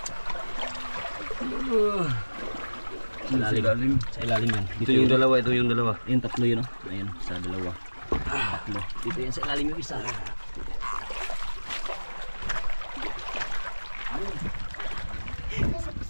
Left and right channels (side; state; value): both; inverted; correlation -1.00